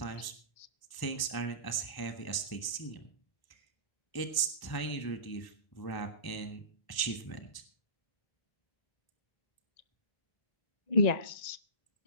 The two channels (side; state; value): right; late; 1.1 ms